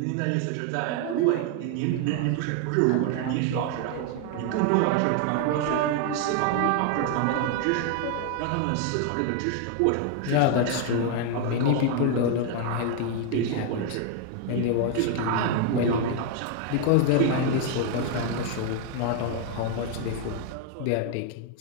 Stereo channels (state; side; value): different; both; correlation 0.01